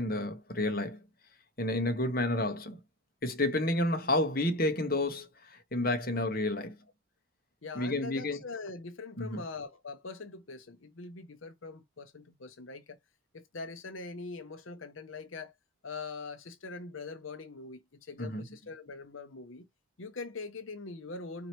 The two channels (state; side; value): normal; both; correlation 0.25